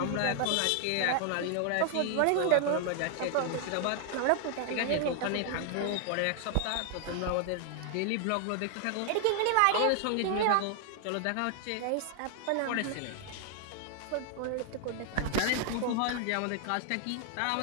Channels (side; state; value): both; different; correlation 0.00